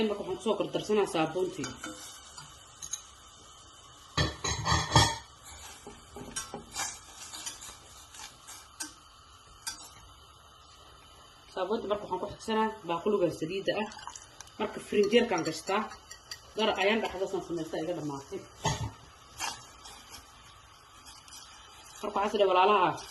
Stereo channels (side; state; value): both; identical; correlation 1.00